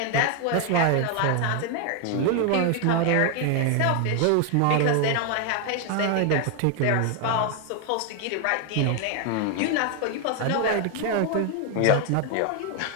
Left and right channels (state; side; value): different; both; correlation 0.00